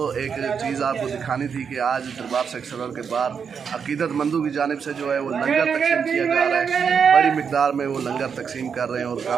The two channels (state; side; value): quieter; left; 6.6 dB